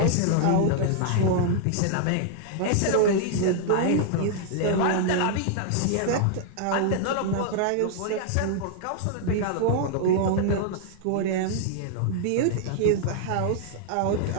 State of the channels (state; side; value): different; both; correlation -0.01